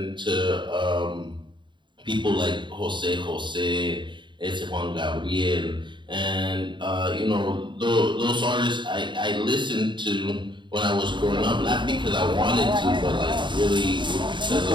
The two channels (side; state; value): left; late; 0.23 ms